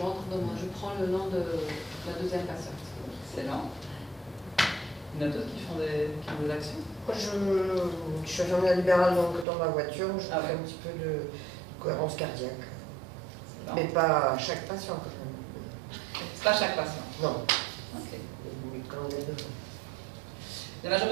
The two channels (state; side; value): drops out; left; at 9.5 s